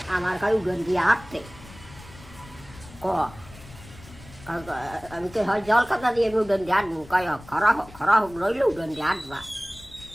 আমার কাছে উড়ন দিয়ে হাঁটতে আমি তো হয় জল খাতা দিয়ে আমি উড়ন দিয়ে হাঁটবো, কয় খরা হোক রইলে উড়ন দিয়ে হাঁটবা।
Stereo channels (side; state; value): left; noise; rumble, 19 dB below the sound